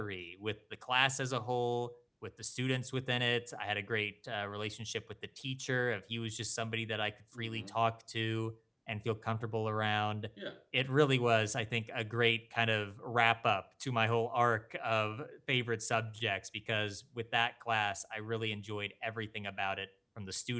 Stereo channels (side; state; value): both; identical; correlation 1.00